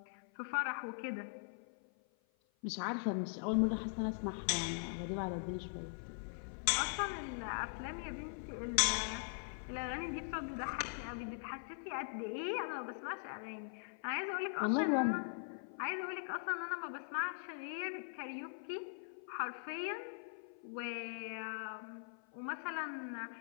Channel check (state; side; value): silent; right; 50 dB below the other